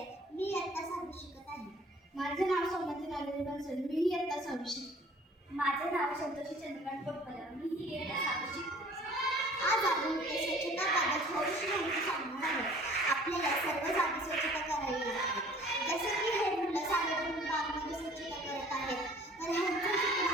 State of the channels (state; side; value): normal; both; correlation 0.51